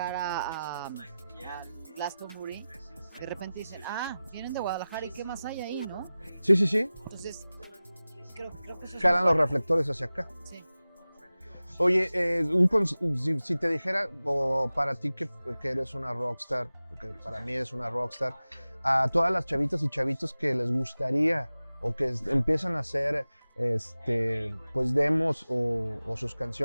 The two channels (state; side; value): inverted; both; correlation -0.96